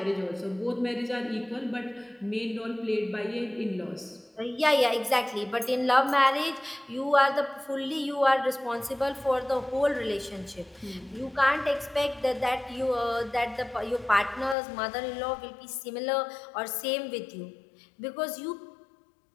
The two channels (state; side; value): drops out; right; at 14.6 s